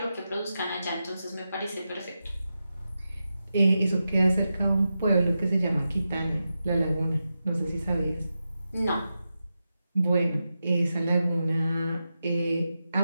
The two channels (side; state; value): both; inverted; correlation -0.90